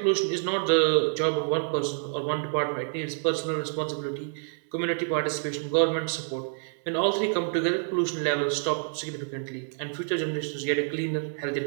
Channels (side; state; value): left; silent; digital silence